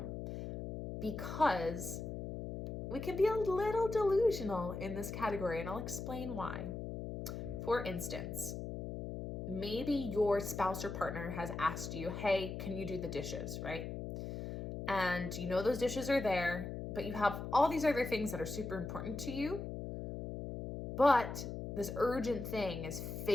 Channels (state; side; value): noise; left; hum, 6 dB below the sound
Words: because we can be a little delusional in this category, and I'll explain why. For instance, maybe your spouse or partner has asked you, hey, can you do the dishes, right? And you know those dishes are there, but you have all these other things that are super important to you, but this urgent thing is